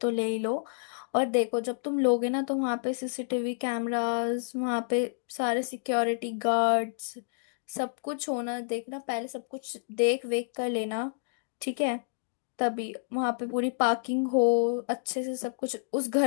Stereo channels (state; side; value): silent; right; digital silence